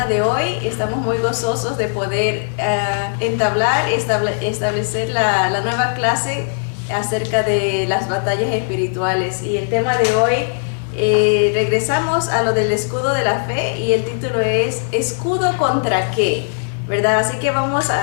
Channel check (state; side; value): silent; right; digital silence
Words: de hoy. Estamos muy gozosos de poder establecer la nueva clase acerca de las batallas espirituales. Y el tema de hoy, regresamos a lo del escudo de la fe y el título es ¿escudo contra qué? ¿Verdad? Así que vamos